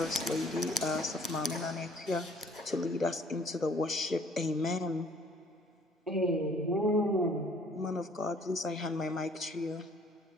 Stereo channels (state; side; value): normal; both; correlation 0.57